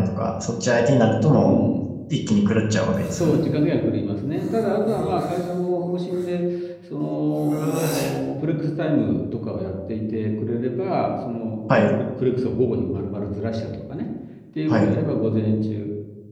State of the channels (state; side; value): identical; both; correlation 1.00